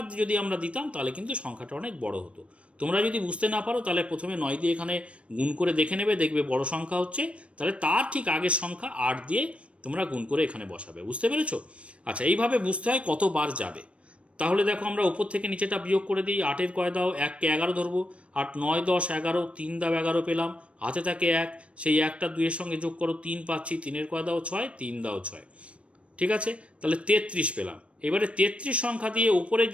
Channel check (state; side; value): late; left; 0.061 ms